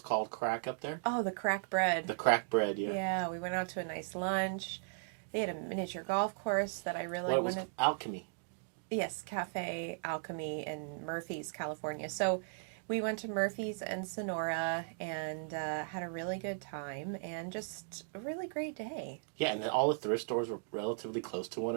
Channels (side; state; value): left; silent; digital silence